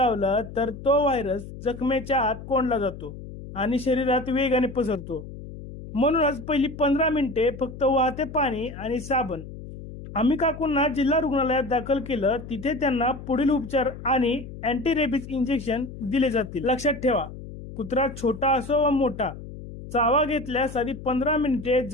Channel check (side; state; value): left; noise; hum, 13 dB below the sound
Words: तर तो व्हायरस जखमेच्या आत कोंडला जातो आणि शरीरात वेगाने पसरतो। म्हणूनच पहिली 15 मिनिटे फक्त वाहते पाणी आणि साबण। आम्ही काकूंना जिल्हा रुग्णालयात दाखल केलं, तिथे त्यांना पुढील उपचार आणि अँटी रेबीज इंजेक्शन दिले जातील। लक्षात ठेवा, कुत्रा छोटा असो वा मोठा, चावा घेतल्यास आधी 15 मिनिटे